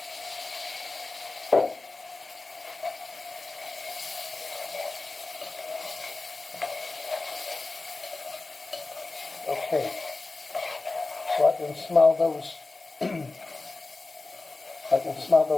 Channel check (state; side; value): quieter; right; 3.4 dB